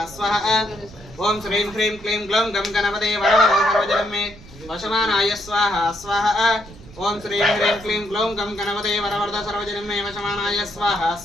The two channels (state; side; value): noise; right; rumble, 19 dB below the sound